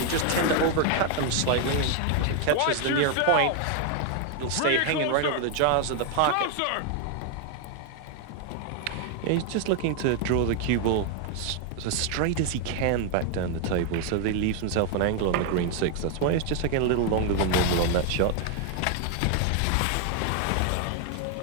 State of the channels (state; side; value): different; both; correlation 0.00